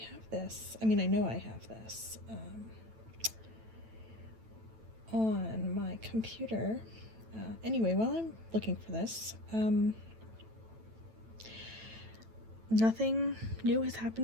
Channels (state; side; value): late; left; 9.1 ms